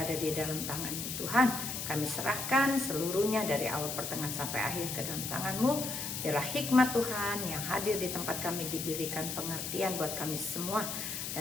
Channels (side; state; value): left; noise; hiss, 4 dB below the sound